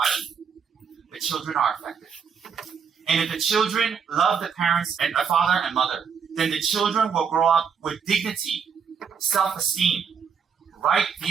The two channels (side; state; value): left; quieter; 6.6 dB